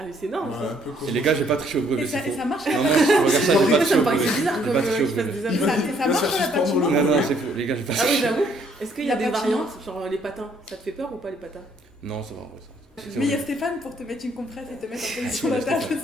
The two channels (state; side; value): normal; both; correlation 0.66